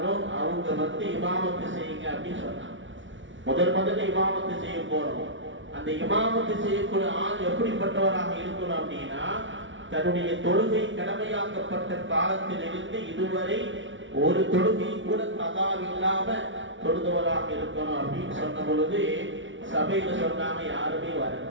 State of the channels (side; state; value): left; late; 0.56 ms